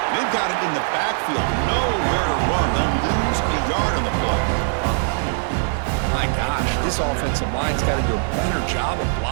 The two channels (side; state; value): left; silent; digital silence